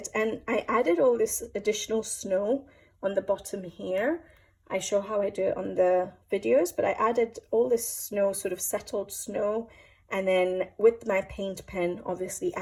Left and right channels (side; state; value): both; identical; correlation 1.00